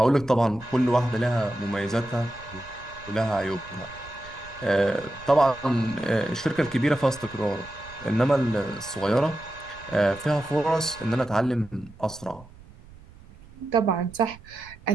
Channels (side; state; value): right; noise; rumble, 21 dB below the sound